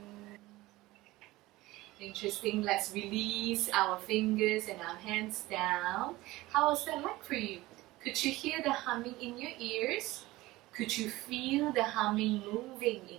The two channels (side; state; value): left; quieter; 18.9 dB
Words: Interesting. Let's release our fingers and our hands down. How was that like for you? Could you hear the humming in your ears? Could you feel the humming moving